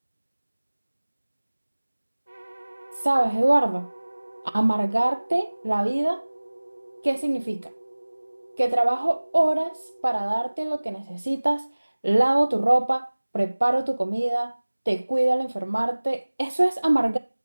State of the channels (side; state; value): both; inverted; correlation -1.00